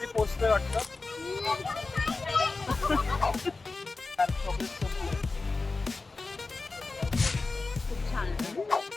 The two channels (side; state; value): right; quieter; 3.7 dB